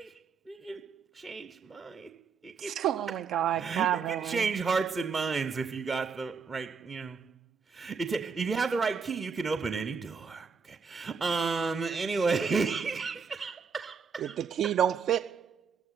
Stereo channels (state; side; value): quieter; left; 5.7 dB